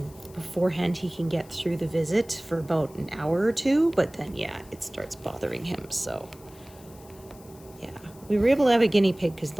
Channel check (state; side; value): noise; left; hiss, 24 dB below the sound